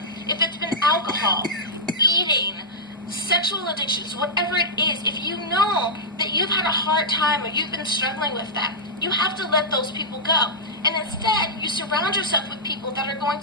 If it's been alcohol, eating, sexual addictions, whatever it is, if you know that you've had a hard time or you've been struggling with that, you have to let those people go. And instead, you surround yourself with people that are going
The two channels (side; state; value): both; normal; correlation -0.11